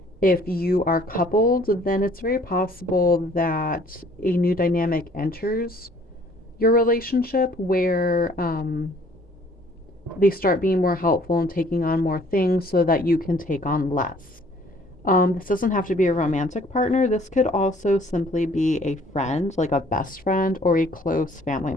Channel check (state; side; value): normal; both; correlation 0.57